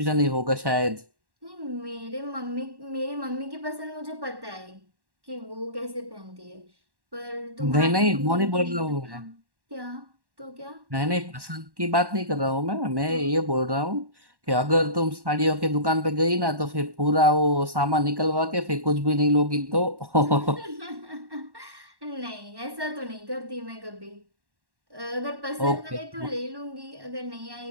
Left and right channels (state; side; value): late; left; 1.1 ms